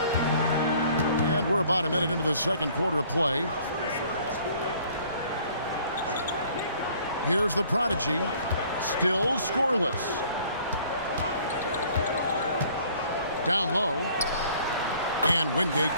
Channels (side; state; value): both; inverted; correlation -0.56